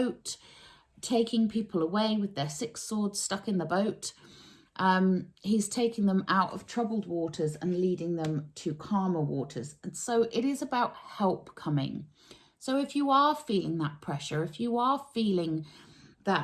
taking people away with their 6 swords stuck in the boat. He's taking them out of troubled waters and leading them to calmer waters. And so it is about help coming. So if you are feeling that pressure, if you are feeling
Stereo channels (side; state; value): both; identical; correlation 1.00